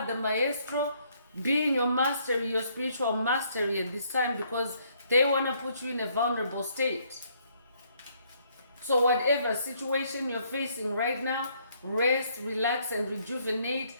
the maestro, be in your mastery, your spiritual mastery at this time, because they want to put you in a vulnerable state. So whatever situation you're facing right now, rest, relax, and rejuvenate.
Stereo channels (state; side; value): inverted; both; correlation -0.68